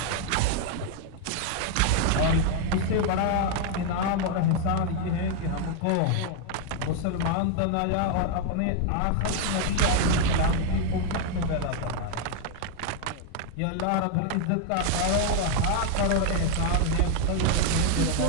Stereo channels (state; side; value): different; both; correlation 0.00